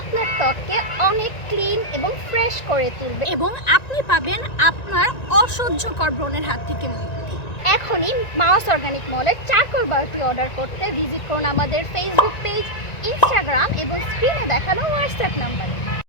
ত্বককে অনেক ক্লিন এবং ফ্রেশ করে তুলবে এবং আপনি পাবেন আপনার অসহ্যকর ব্রণের হাত থেকে মুক্তি। এখনই মাউস অর্গানিক মলের চারকোল বারটি অর্ডার করতে ভিজিট করুন আমাদের ফেসবুক পেজ, ইনস্টাগ্রাম এবং স্ক্রিনে দেখানো হোয়াটসঅ্যাপ নাম্বারে।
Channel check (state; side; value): late; right; 1.9 ms